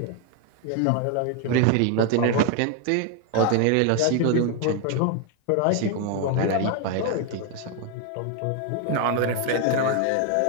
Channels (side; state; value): both; different; correlation 0.01